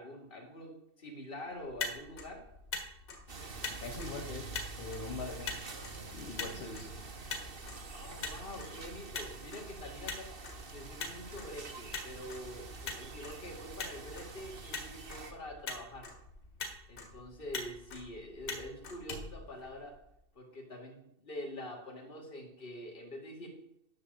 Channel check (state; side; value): late; right; 2.7 ms